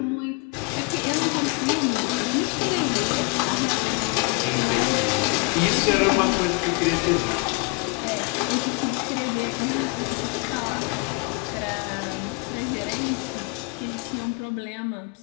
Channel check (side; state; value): right; quieter; 28.7 dB